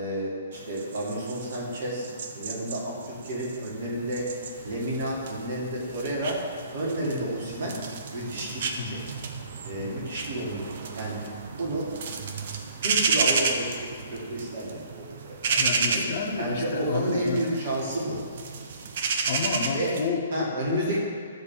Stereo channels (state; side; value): inverted; both; correlation -0.56